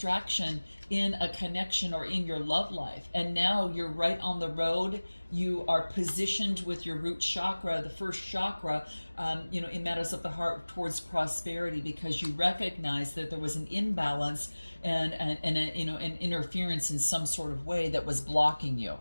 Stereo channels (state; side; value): inverted; both; correlation -1.00